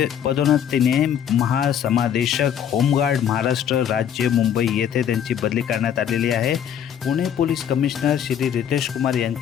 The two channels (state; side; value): quieter; right; 9.1 dB